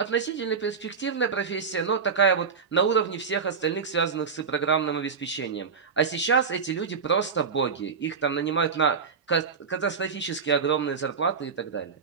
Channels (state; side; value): quieter; left; 5.7 dB